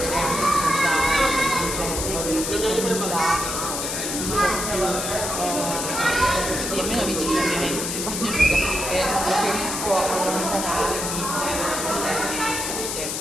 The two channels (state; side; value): noise; left; hiss, 3 dB below the sound